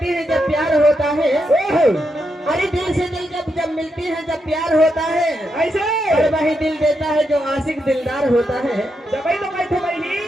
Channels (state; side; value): normal; both; correlation 0.83